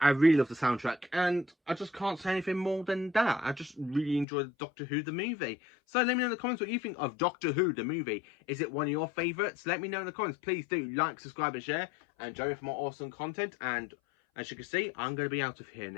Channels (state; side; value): drops out; right; at 4.2 s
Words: really love the soundtrack, and I just can't say anything more than that. I just really enjoyed Doctor Who the movie. So let me know in the comments what you think of Doctor Who the movie. Is it one of your favourites? Let me know in the comments. Please do like, subscribe and share, and join me for more awesome content. And as you can see, I'm going to be out of here